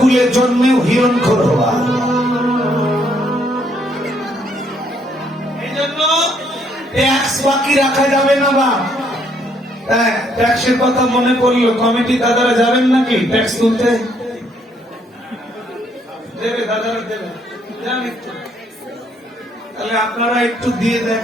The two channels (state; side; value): normal; both; correlation 0.70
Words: জন্মেও হিরণখোর হবা। এই জন্য ট্যাক্স বাকি রাখা যাবে না। বা ট্যাক্সের কথা মনে পড়লো, কমিটি দাদারা যাবেন নাকি ট্যাক্স তুলতে? দেবে দাদারা, দেবে, জানি। তাহলে আপনারা একটু দিয়ে দেন,